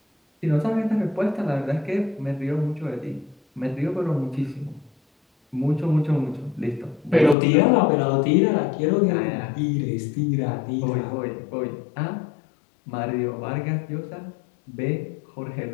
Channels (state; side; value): drops out; right; at 7.4 s